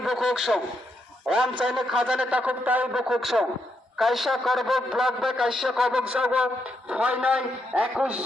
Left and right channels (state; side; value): normal; both; correlation 0.80